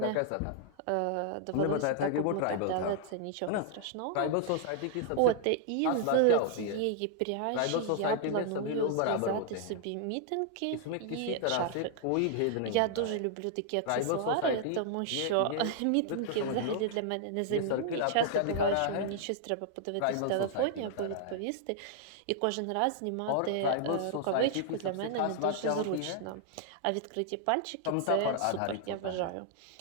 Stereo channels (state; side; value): different; both; correlation -0.01